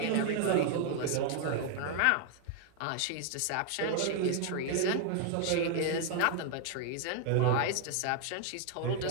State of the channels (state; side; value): different; both; correlation 0.00